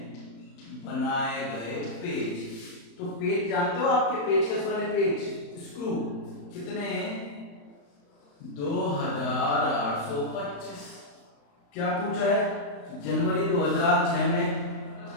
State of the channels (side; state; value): right; late; 35 ms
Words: बनाए गए पेज। तो पेज जानते हो आपके पेज कैसे बने, पेज स्क्रू कितने, 2825। क्या पूछा है, जनवरी 2006 में,